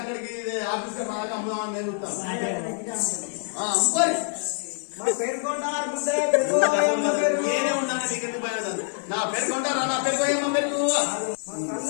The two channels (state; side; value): silent; right; 61 dB below the other